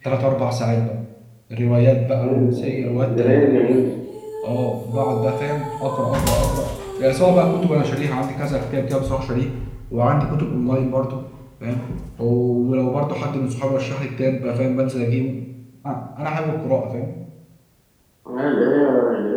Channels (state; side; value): identical; both; correlation 1.00